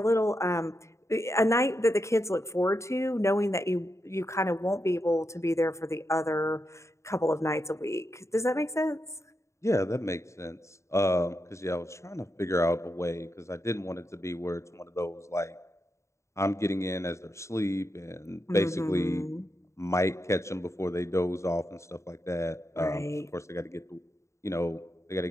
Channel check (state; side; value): late; right; 0.14 ms